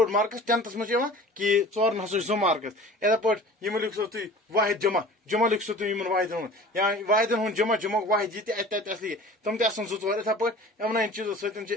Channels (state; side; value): normal; both; correlation 0.42